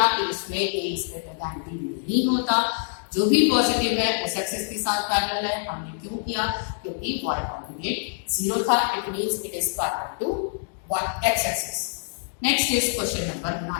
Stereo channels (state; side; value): silent; right; digital silence